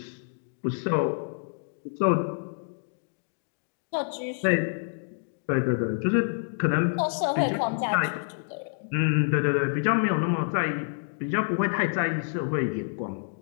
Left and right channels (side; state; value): right; silent; digital silence